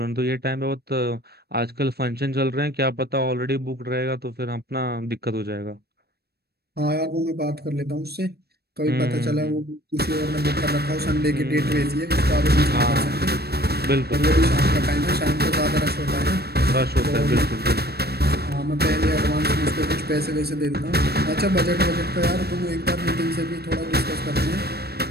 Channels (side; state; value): left; late; 0.47 ms